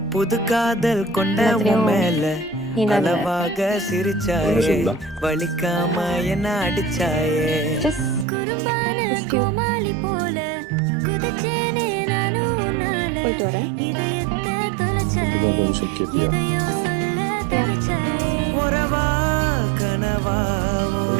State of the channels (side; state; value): left; drops out; at 8.2 s